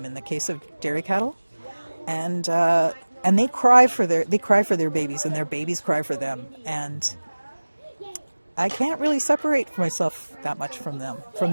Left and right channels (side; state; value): both; inverted; correlation -1.00